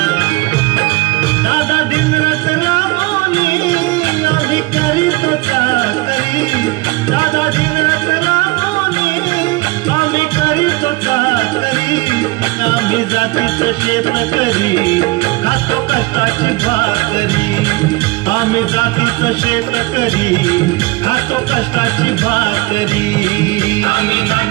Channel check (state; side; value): quieter; left; 22.0 dB